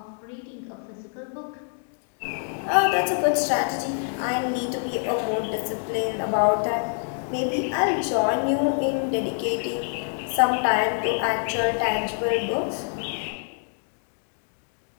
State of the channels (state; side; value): silent; right; 61 dB below the other